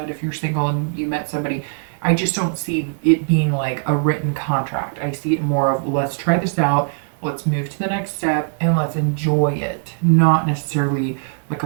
if you're single and you met somebody, I just don't see it being like a written contract. I see it more of, let's try this out, let's move to the next step, and let's enjoy it. Not necessarily like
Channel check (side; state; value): left; silent; 66 dB below the other